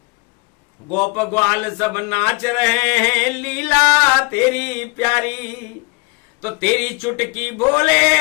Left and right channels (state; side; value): quieter; right; 28.7 dB